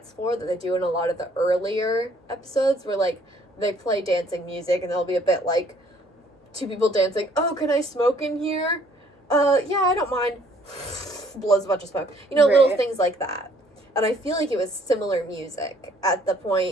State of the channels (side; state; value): both; normal; correlation 0.61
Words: floor that they do in a lot of the earlier episodes where, like, they play dancing music, and there'll be a bit, like, 2 people dancing. Oh, can I smoke in here? Yeah, I don't mind. Blows a bunch of smoke. You know, little things like that. And I feel like it was similar music at the